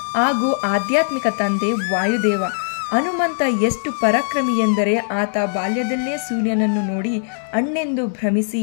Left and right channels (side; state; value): right; silent; digital silence